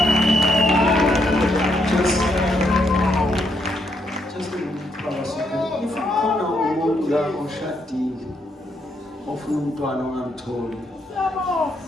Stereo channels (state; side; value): normal; both; correlation 0.76